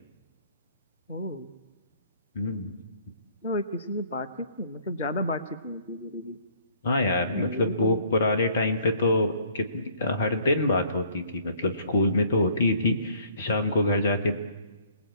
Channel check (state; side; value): inverted; both; correlation -0.59